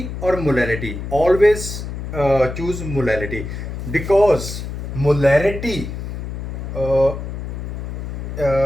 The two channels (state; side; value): noise; left; hum, 6 dB below the sound